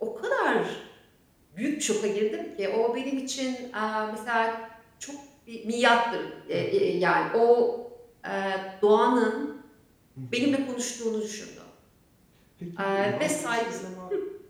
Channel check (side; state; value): both; identical; correlation 1.00